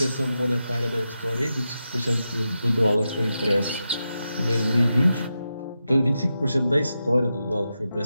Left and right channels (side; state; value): both; inverted; correlation -0.89